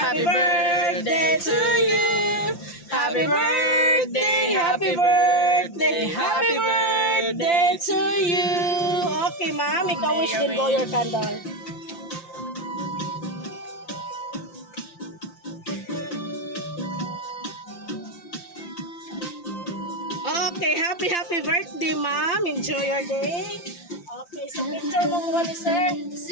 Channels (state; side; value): late; right; 5.8 ms